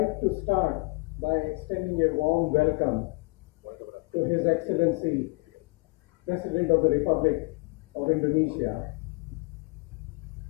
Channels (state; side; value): quieter; right; 28.3 dB